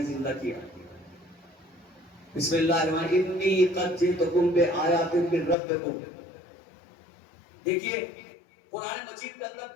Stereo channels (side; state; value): right; drops out; at 5.6 s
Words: زندہ کیا؟ بسم اللہ الرحمن الرحیم انی قد جئتکم بآیات من ربکم. دیکھیے قرآن مجید کے اندر